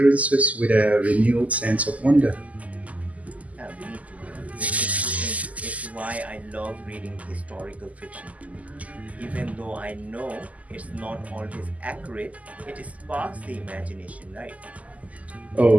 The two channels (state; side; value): late; left; 0.073 ms